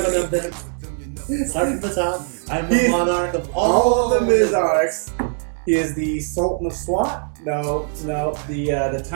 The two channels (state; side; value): silent; left; 62 dB below the other